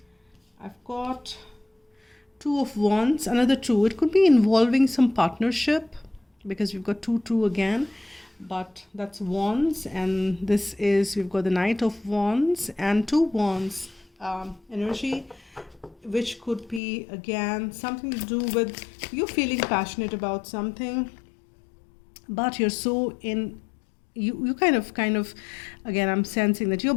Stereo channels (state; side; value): drops out; right; at 16.8 s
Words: I've got 2 of Wands, another 2. It could be involving some partnership, because we've got 2 again, but that's Wands, and this is, we've got the Knight of Wands and 2 Wands energy, which could be again something to do with you feeling passionate about something, but you're so in, you kind of again, I'm sensing that you're